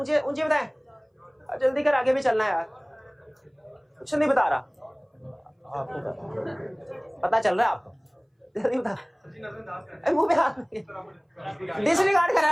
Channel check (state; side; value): identical; both; correlation 1.00